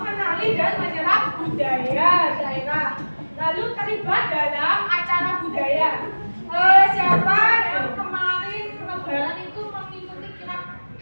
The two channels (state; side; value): inverted; both; correlation -1.00